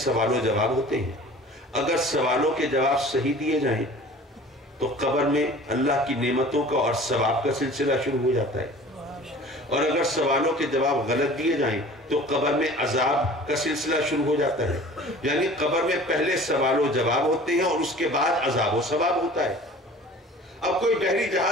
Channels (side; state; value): both; normal; correlation 0.44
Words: و جواب ہوتے ہیں، اگر سوالوں کے جواب صحیح دیے جائیں تو قبر میں اللہ کی نعمتوں کا اور ثواب کا سلسلہ شروع ہو جاتا ہے، اور اگر سوالوں کے جواب غلط دیے جائیں تو قبر میں عذاب کا سلسلہ شروع ہو جاتا ہے۔ یعنی قبر میں پہلے سوال و جواب ہوتے ہیں اور اس کے بعد عذاب و ثواب ہوتا ہے۔ اب کوئی بحری